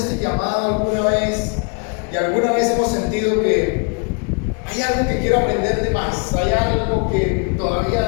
llamado alguna vez, y alguna vez hemos sentido que hay algo que quiero aprender de más, hay algo que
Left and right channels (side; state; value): right; quieter; 37.4 dB